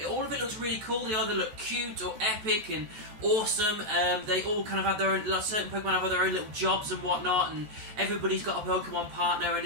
All of it looks really cool. They either look cute or epic and awesome. They all kind of have their own. Like certain Pokemon have their own little jobs and whatnot, and everybody's got a Pokemon partner, and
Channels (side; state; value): left; late; 14 ms